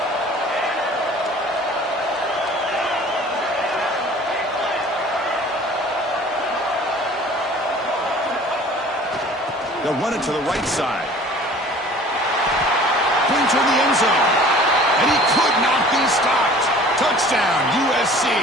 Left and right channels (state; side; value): normal; both; correlation 0.48